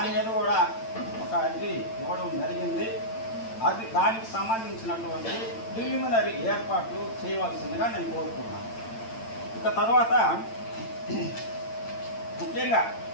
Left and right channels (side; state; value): right; late; 8.9 ms